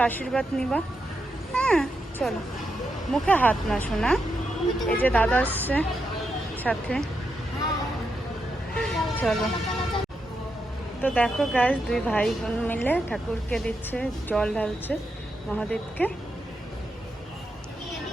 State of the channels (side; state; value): both; normal; correlation 0.84